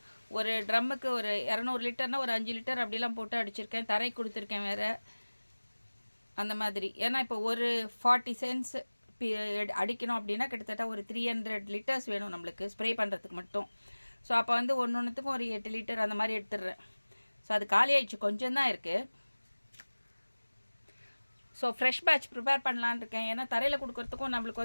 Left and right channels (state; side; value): inverted; both; correlation -1.00